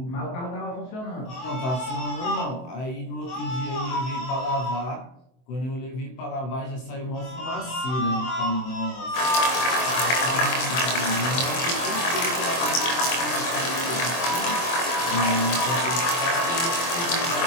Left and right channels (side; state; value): right; late; 23 ms